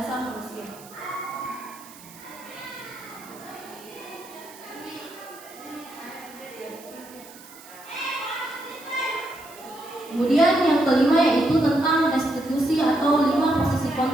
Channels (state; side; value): noise; right; hiss, 20 dB below the sound